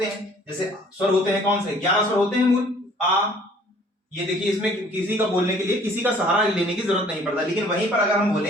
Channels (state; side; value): normal; both; correlation 0.55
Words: हैं। जैसे स्वर होते हैं कौन से, 11 स्वर होते हैं मूल। आ, ये देखिए, इसमें किसी का बोलने के लिए किसी का सहारा लेने की जरूरत नहीं पड़ता। लेकिन वहीं पर अगर हम